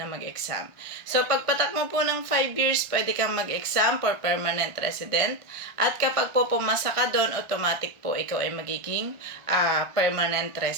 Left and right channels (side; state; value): left; late; 1.4 ms